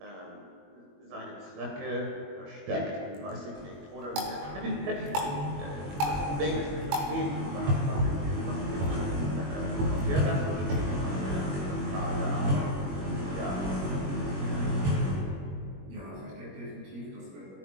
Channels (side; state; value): left; late; 21 ms